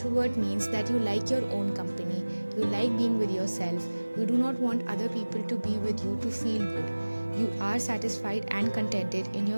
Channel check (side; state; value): both; inverted; correlation -1.00